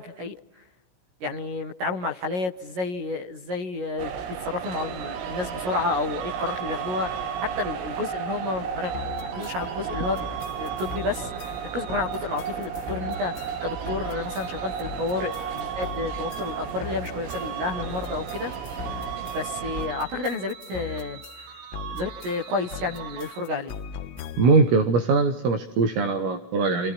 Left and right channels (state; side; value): late; left; 16 ms